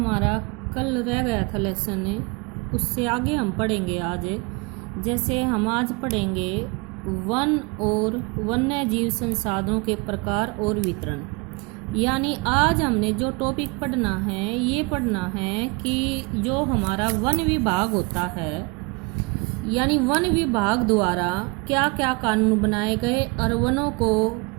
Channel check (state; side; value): quieter; left; 28.3 dB